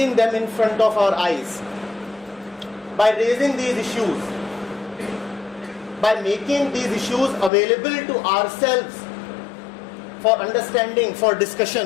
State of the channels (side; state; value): right; drops out; at 7.5 s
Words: them in front of our eyes, by raising these issues, by making these issues available to ourselves for understanding, for